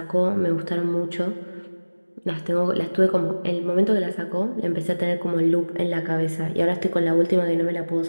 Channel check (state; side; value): inverted; both; correlation -1.00